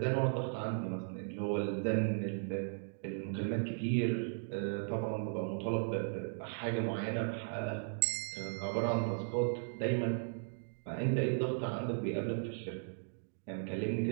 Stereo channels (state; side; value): silent; left; digital silence